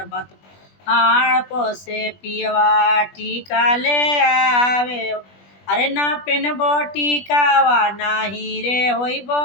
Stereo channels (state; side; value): late; right; 20 ms